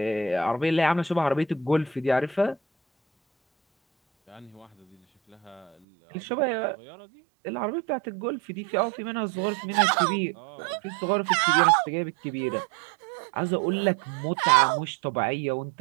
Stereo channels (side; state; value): left; drops out; at 5.8 s